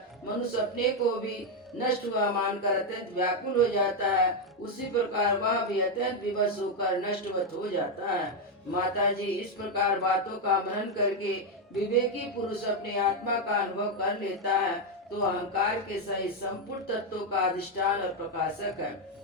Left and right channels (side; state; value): both; normal; correlation 0.04